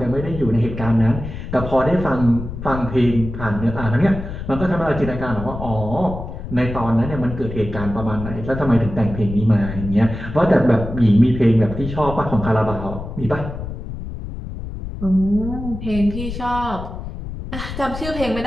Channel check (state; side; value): noise; left; rumble, 8 dB below the sound